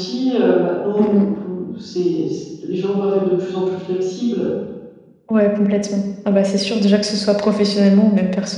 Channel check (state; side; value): identical; both; correlation 1.00